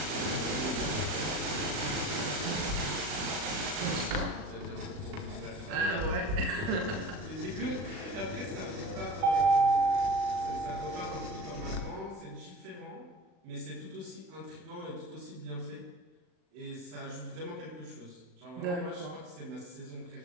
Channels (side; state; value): left; late; 39 ms